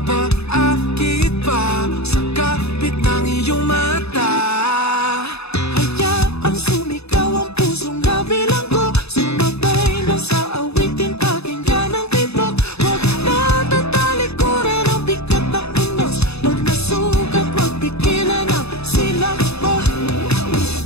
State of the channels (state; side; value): late; right; 0.79 ms